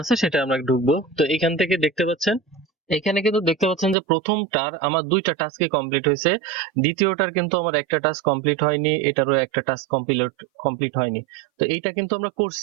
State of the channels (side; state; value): left; drops out; at 4.0 s